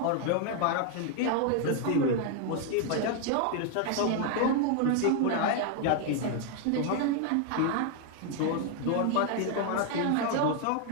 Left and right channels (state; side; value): different; both; correlation 0.00